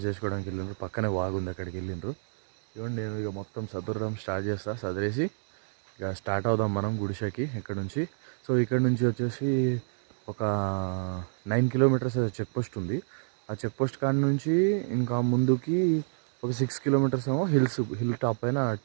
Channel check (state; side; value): silent; left; digital silence